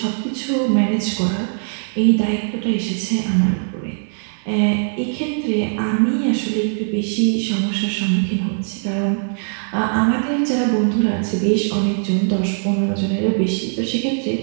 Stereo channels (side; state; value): left; silent; 61 dB below the other